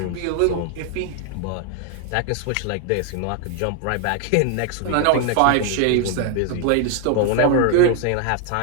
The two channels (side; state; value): both; different; correlation 0.00